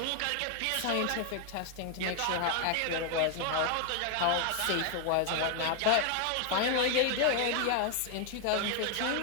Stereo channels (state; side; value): different; both; correlation 0.00